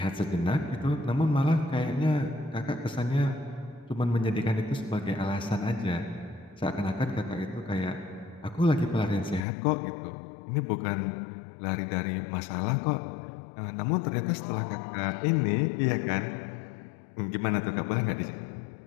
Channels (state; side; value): drops out; right; at 9.5 s